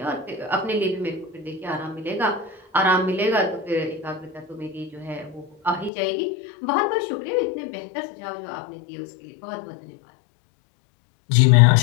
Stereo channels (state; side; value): drops out; right; at 5.9 s